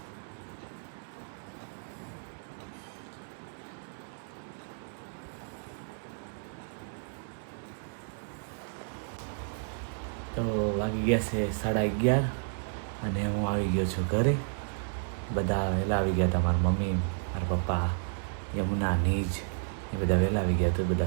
તો વાગી ગયા છે 11:30 અને હું આવી ગયો છું ઘરે. બધા વહેલા આવી ગયા હતા. મારા મમ્મી, મારા પપ્પા, યમુના, નીજ એ બધા વહેલા આવી ગયા. તો એ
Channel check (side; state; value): left; silent; 56 dB below the other